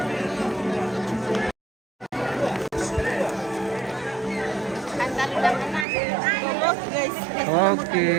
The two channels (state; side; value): drops out; left; at 5.9 s